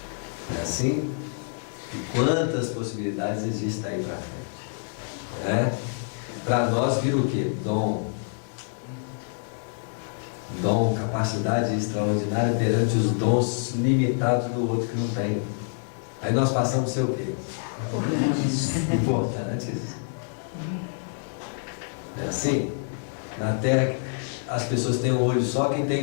É assim? E quantas possibilidades existem aí para frente? Para nós vira o quê? Dom, capacidade extraordinária perante os dons limitados do outro que não tem. Aí nós passamos a ser o quê? Importantes. É assim? Na Terra as pessoas têm um olho só, quem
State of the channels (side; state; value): right; silent; digital silence